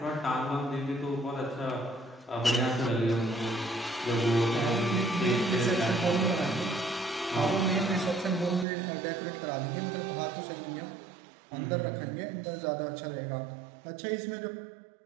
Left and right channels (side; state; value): left; drops out; at 8.7 s